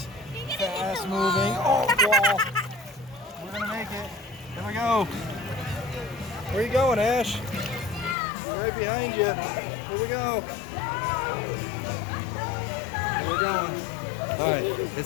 Fast moving. Oh, wall. We're gonna make it. Here we go. Where are you going, Ash? Right behind you. Here we go. Where we're going. All right,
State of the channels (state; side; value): drops out; right; at 8.2 s